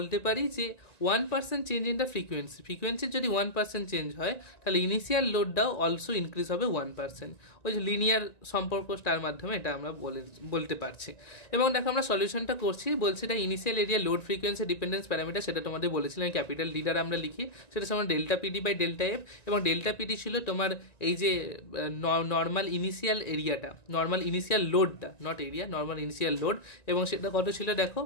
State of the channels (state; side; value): late; right; 1.9 ms